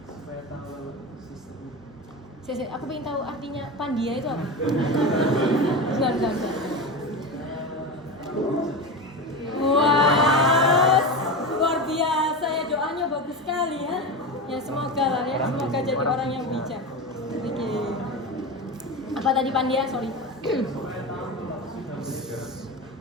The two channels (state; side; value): normal; both; correlation 0.23